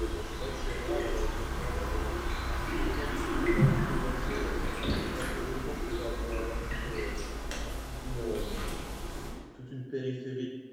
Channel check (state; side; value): identical; both; correlation 1.00